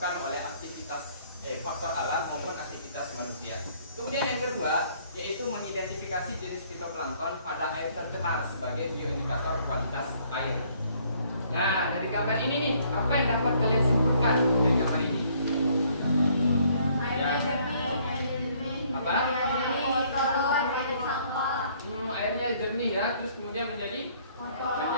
oleh aktivitas faktor alam maupun aktivitas manusia. Kemudian yang kedua yaitu mengidentifikasi jenis fitoplankton pada air tercemar sebagai bioindikator kualitas air. Nah, dari gambar ini nih, apa yang dapat kalian simpulkan dari gambar ini? Airnya jernih. Apa? Kotor, ada sampah. Airnya jernih ya, terus kemudian menjadi Kotor,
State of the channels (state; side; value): inverted; both; correlation -0.63